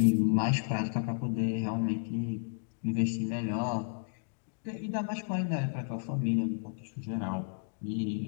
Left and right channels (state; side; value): silent; right; digital silence